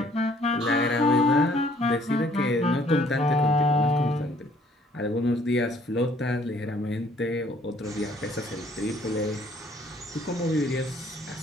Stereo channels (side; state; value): both; normal; correlation 0.61